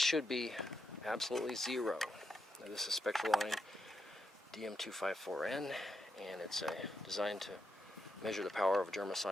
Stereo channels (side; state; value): both; normal; correlation 0.83